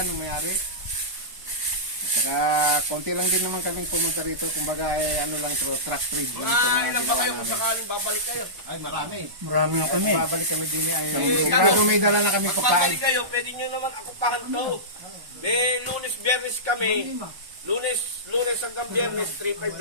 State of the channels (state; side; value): late; left; 1.0 ms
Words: ng mayari. Saka konti lang din naman kaming pumunta rito. Kumbaga ay ano lang ito, truck trade lang ito. Ilan ba kayo kung sakaling babalik kayo? Ay marami. Marami na kami. Babalik kami din ay sigurado may dala na kami pagkain. Babalik kayo, pwede nyo naman akupahan to. May lunes, biyernes kami. Lunes hanggang biyernes, 3-5